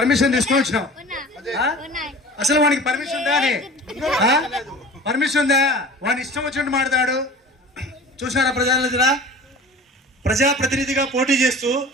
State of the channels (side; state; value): both; normal; correlation 0.40